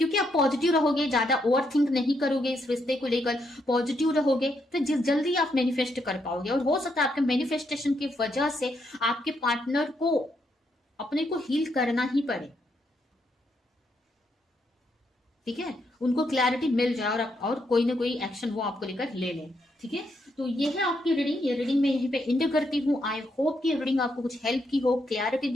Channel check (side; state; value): both; normal; correlation 0.78